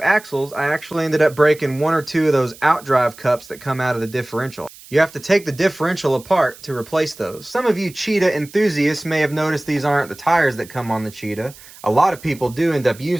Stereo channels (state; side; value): noise; right; hiss, 20 dB below the sound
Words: axles, I actually ended up breaking one or two of those outdrive cups that come out of the differential. You have to take the differential apart to replace those. Some of you Cheetah enthusiasts may have noticed these aren't the tires that come on the Cheetah. A lot of people do end up